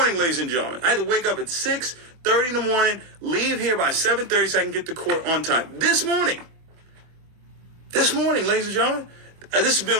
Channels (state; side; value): late; left; 24 ms